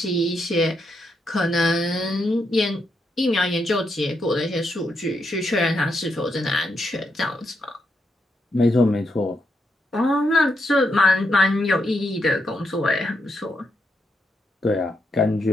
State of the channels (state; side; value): normal; both; correlation 0.81